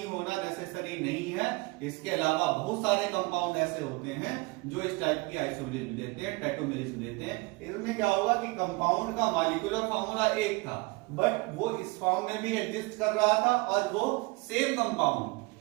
होना नेसेसरी नहीं है, इसके अलावा बहुत सारे कंपाउंड ऐसे होते हैं जो इस टाइप की आइसोमेरिज्म देते हैं, टैटोमेरिज्म देते हैं। इसमें क्या होगा कि कंपाउंड का मॉलिक्यूलर फार्मूला एक था, बट वो इस फॉर्म में भी एग्जिस्ट कर रहा था और वो सेम कंपाउंड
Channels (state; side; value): quieter; left; 25.6 dB